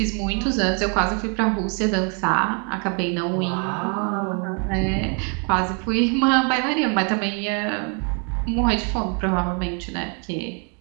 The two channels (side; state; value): left; quieter; 38.0 dB